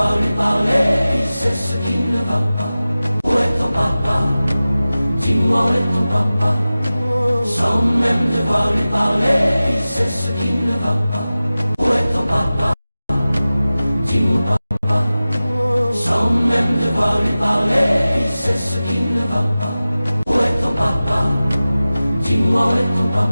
lui parler, il sait ce qui ne va pas. Où est ton papa? Dis-moi où est ton papa? Sans même devoir lui parler, il sait ce qui ne va pas. Où est ton papa? Dis-moi papa. Sans même devoir lui parler, il sait ce qui ne va pas. Où est ton papa? Dis-moi où est ton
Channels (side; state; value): both; inverted; correlation -0.96